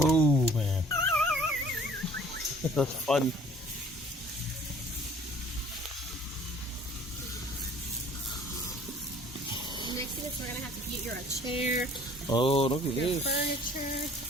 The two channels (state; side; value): normal; both; correlation 0.53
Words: Oh man, that's fun. Next thing is we're gonna have to get you a chair, Oh, look at your this. furniture.